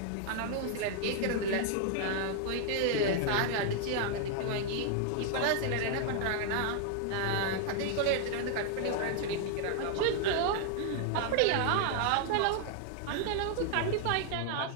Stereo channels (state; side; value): different; both; correlation 0.00